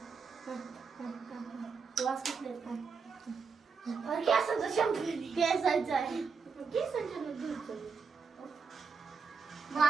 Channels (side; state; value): left; quieter; 5.5 dB